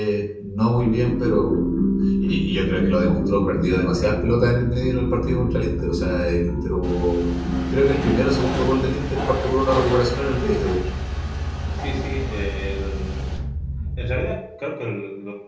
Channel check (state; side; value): identical; both; correlation 1.00